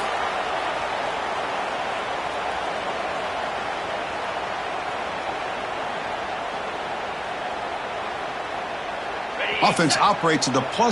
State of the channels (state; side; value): identical; both; correlation 1.00